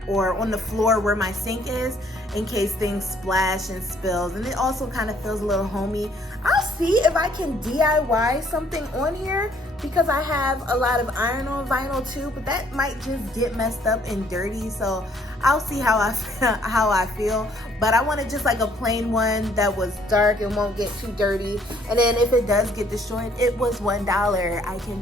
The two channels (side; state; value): both; normal; correlation 0.63